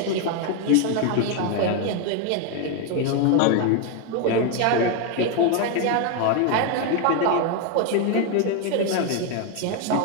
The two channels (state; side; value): different; both; correlation 0.01